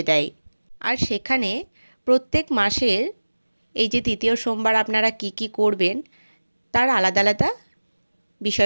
দেয়। আর সেখানে প্রত্যেক মাসের এই যে তৃতীয় সোমবার আপনারা কি কি করবেন তার আলাদা আলাদা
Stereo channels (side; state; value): both; inverted; correlation -1.00